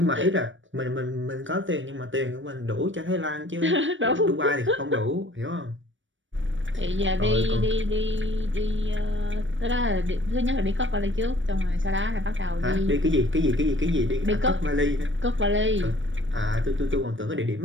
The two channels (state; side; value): late; left; 0.56 ms